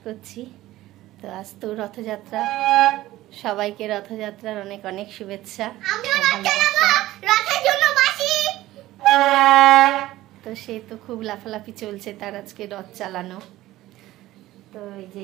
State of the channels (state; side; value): quieter; left; 16.1 dB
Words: करछि। तो आज तो रथयात्रा, सबाइके रथयात्रार अनेक अनेक शुभेच्छा। तो से तो खूब लाफालाफी चलছে तार आजके रथ चालानो। तो এই যে